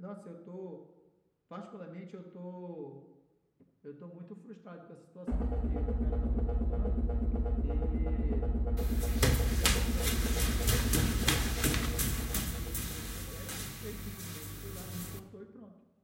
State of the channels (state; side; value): identical; both; correlation 1.00